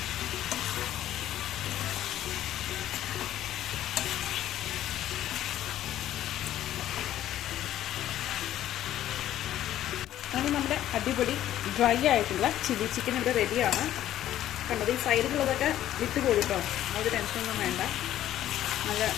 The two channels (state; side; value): quieter; right; 12.5 dB